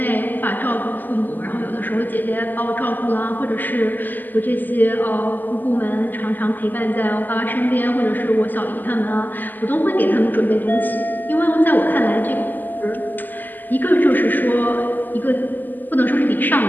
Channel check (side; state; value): right; late; 0.086 ms